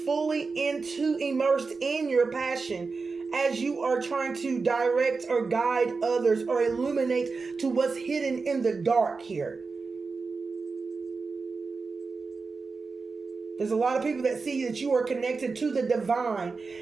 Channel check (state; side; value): quieter; left; 4.4 dB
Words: immersed in your passion as you are trying to direct or guide others or illuminate to what's hidden in the dark here. There's a lot of people that see that you are connected to the divine